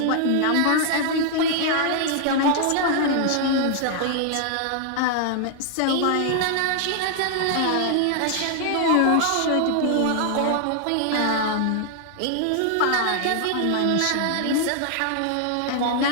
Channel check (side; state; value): both; different; correlation 0.00